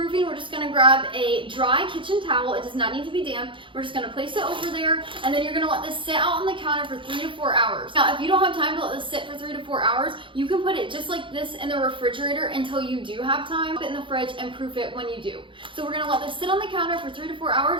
we're just gonna grab a dry kitchen towel. It does not need to be damp. We're just gonna place it over there, and then you're gonna let this sit out on the counter for 3 to 4 hours. Now, if you don't have time to let this sit for 3 to 4 hours, you can put it just like this in the refrigerator until you do have time. Put it in the fridge and proof it when you do. So we're gonna let this sit on the counter for 3 to 4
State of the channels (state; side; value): late; left; 0.25 ms